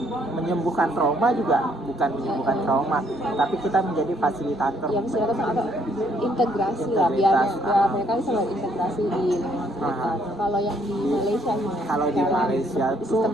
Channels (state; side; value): normal; both; correlation 0.67